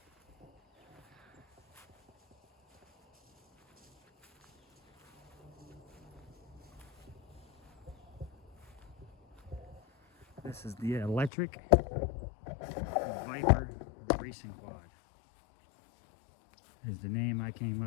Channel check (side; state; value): right; drops out; at 11.3 s